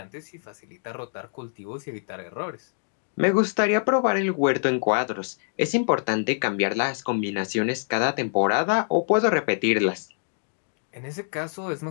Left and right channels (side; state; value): right; silent; digital silence